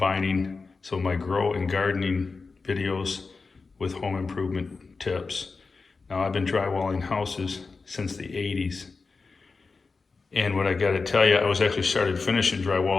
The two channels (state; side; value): quieter; right; 4.3 dB